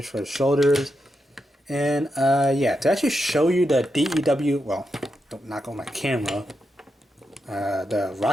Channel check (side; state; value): both; normal; correlation 0.85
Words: for the shoulders. And yeah, to actually show you the DEW, well, don't knock on my camera, the